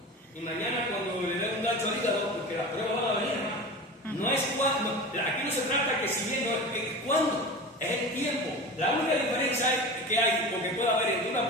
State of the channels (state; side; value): normal; both; correlation 0.31